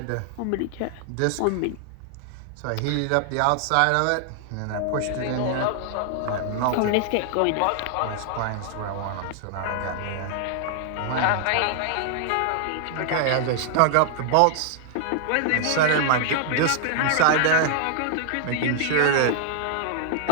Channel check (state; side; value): different; both; correlation 0.00